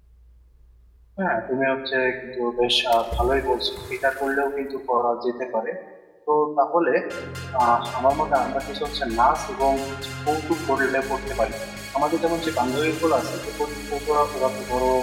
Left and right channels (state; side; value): identical; both; correlation 1.00